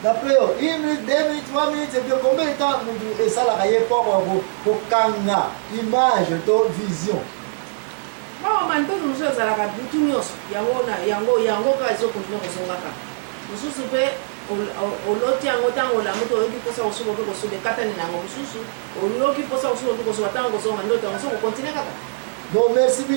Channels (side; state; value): left; silent; 64 dB below the other